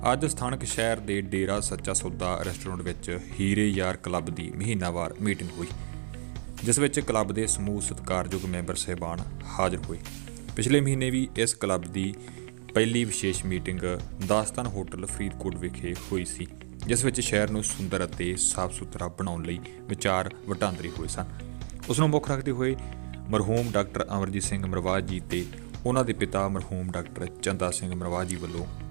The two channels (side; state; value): left; silent; digital silence